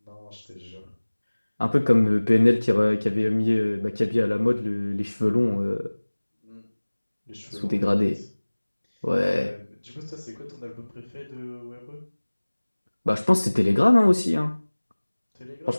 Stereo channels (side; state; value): both; inverted; correlation -1.00